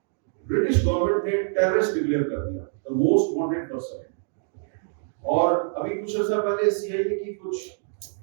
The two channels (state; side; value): silent; left; digital silence